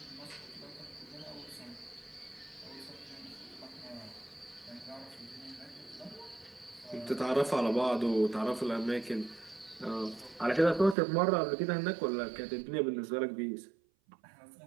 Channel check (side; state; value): left; drops out; at 11.0 s